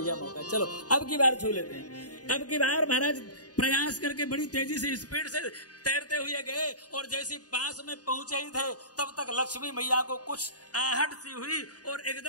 मौका, चलो अब की बार छू लेते हैं। अब की बार महाराज प्रयास करके बड़ी तेजी से स्पीड से तैरते हुए गए और जैसे पास में पहुंचे ही थे तब तक लक्ष्मी मैया को कुछ आहट सी हुई और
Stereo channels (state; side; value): late; right; 0.68 ms